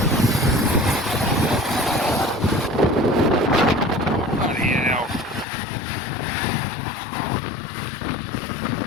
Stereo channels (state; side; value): drops out; right; at 5.5 s